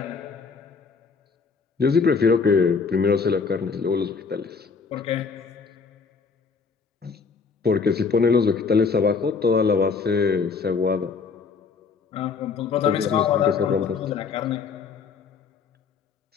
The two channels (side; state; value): right; quieter; 5.2 dB